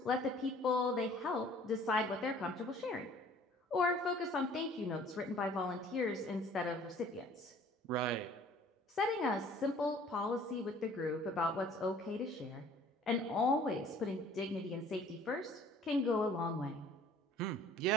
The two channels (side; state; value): both; normal; correlation 0.53